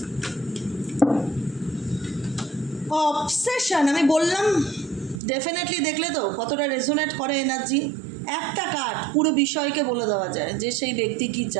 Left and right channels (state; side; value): drops out; left; at 5.2 s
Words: Obsession, আমি বললাম definitely, দেখলে তো কতটা রেজোনেট করে এনার্জি। একটা কার্ড পুরো বিষয়কে বলে দেওয়া যায় যে সেই ব্যক্তি কি